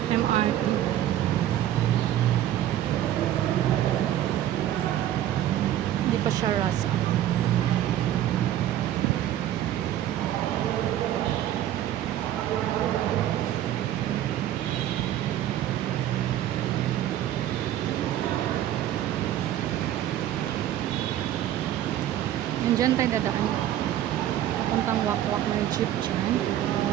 MRT. Hindi pa siya rush hour. Diyan tayo dadaan. Papuntang Wakwak ng jeep dyan.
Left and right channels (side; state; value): left; quieter; 12.3 dB